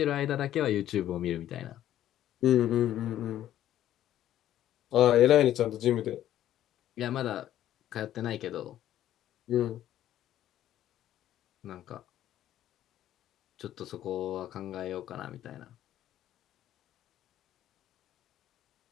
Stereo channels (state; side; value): quieter; right; 12.2 dB